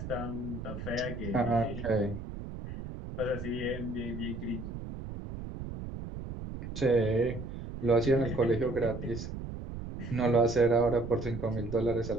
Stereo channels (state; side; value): noise; right; rumble, 8 dB below the sound